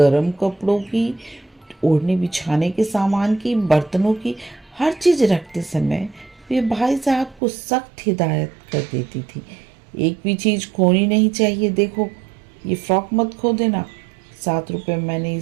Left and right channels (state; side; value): drops out; left; at 7.4 s